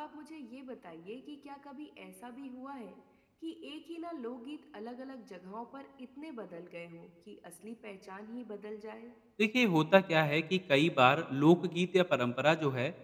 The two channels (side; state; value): both; identical; correlation 1.00